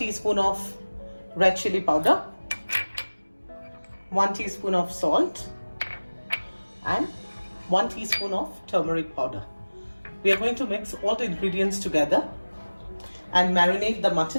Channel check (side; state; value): both; inverted; correlation -1.00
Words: of red chili powder, 1 teaspoon of salt, and 1 teaspoon of turmeric powder. We are going to mix all the ingredients together and marinate the